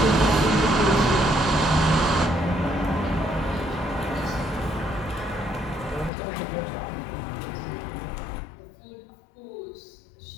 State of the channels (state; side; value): drops out; right; at 6.1 s